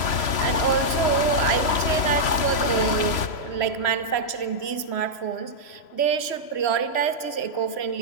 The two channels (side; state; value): right; late; 3.0 ms